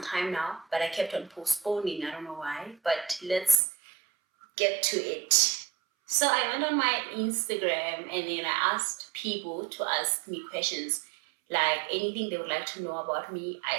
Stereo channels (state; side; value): drops out; left; at 3.6 s